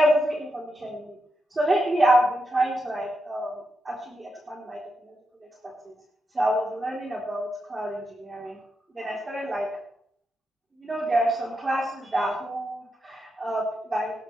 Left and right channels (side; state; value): both; normal; correlation 0.85